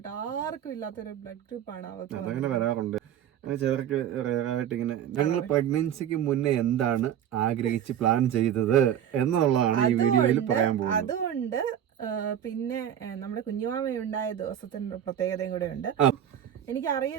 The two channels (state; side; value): quieter; left; 10.0 dB